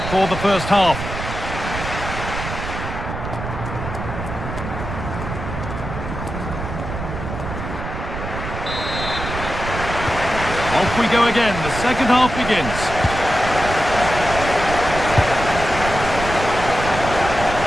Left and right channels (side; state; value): right; noise; rumble, 7 dB below the sound